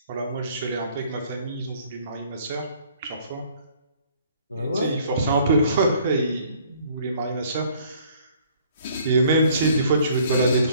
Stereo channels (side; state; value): both; inverted; correlation -0.59